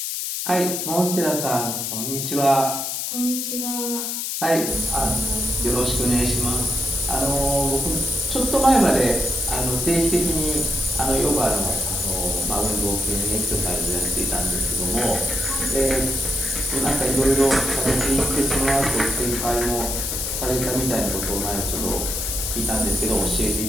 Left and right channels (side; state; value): left; noise; hiss, 3 dB below the sound